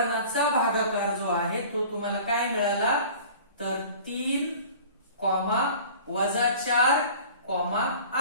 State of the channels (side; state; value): both; inverted; correlation -0.43